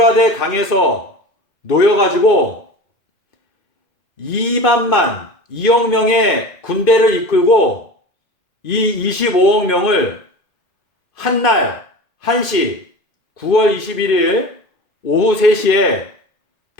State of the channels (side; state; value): right; late; 2.5 ms